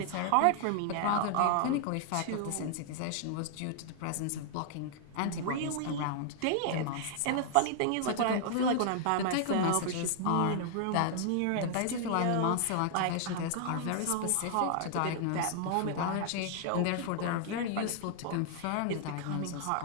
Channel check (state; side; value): different; both; correlation -0.01